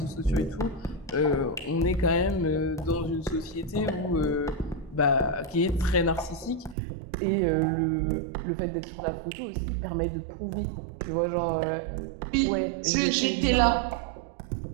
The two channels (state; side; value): drops out; left; at 6.8 s